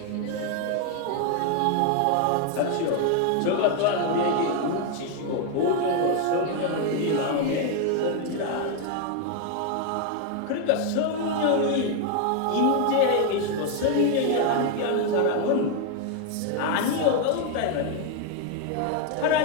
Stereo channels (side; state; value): both; different; correlation 0.01